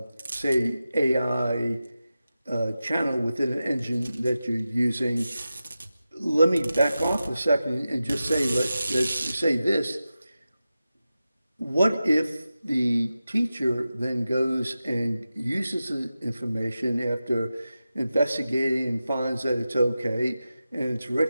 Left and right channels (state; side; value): inverted; both; correlation -0.93